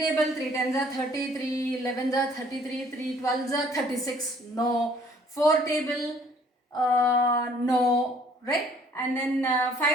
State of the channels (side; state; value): both; normal; correlation 0.58